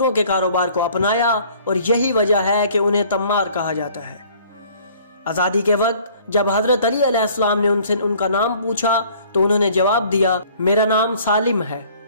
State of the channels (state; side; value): inverted; both; correlation -0.55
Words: के कारोबार को अपनाया और यही वजह है कि उन्हें तम्मार कहा जाता है। आज़ादी के वक्त जब हज़रत अली अलैहिस्सलाम ने उनसे उनका नाम पूछा तो उन्होंने जवाब दिया, मेरा नाम सालिम है।